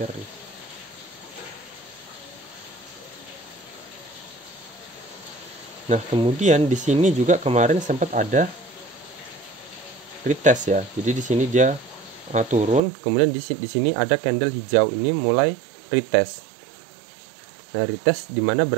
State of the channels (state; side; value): drops out; left; at 12.8 s